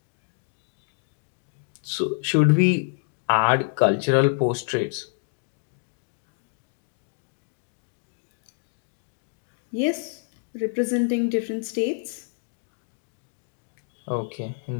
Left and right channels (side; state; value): right; silent; 60 dB below the other